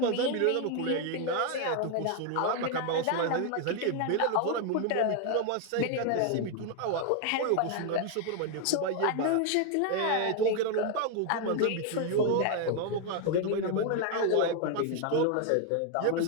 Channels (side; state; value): both; different; correlation 0.00